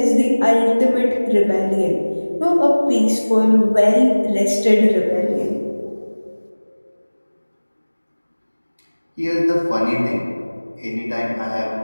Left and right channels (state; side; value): inverted; both; correlation -1.00